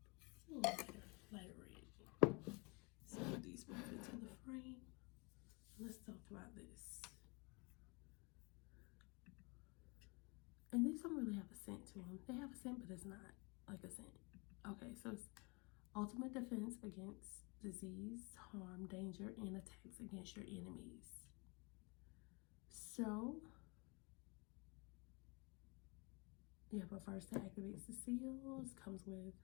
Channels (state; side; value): quieter; right; 29.5 dB